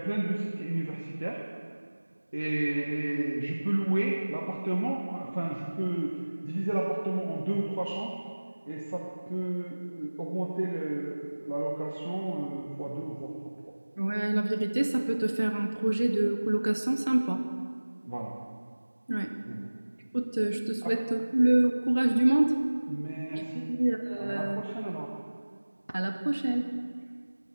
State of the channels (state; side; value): inverted; both; correlation -1.00